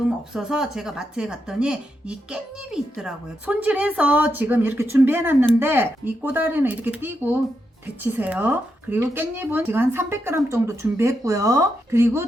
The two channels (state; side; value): normal; both; correlation 0.84